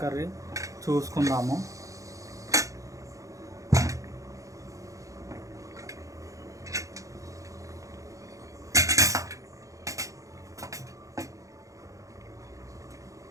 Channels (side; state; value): left; late; 0.16 ms